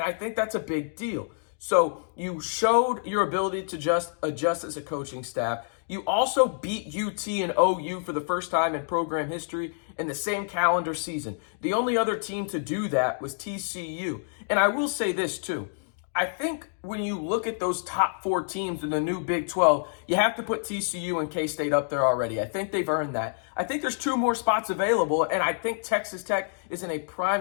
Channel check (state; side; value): silent; right; digital silence